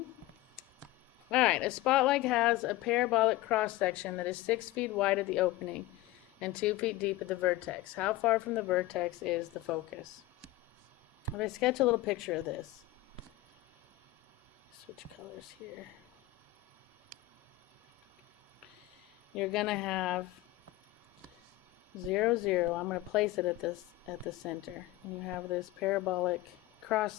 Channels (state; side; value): quieter; right; 17.0 dB